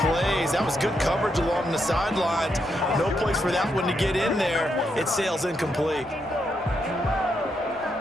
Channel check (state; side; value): normal; both; correlation 0.80